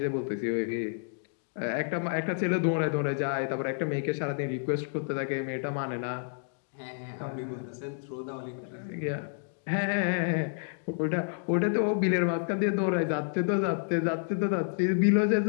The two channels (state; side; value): silent; right; digital silence